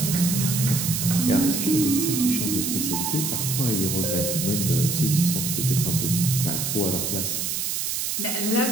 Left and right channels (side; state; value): right; noise; hiss, 1 dB below the sound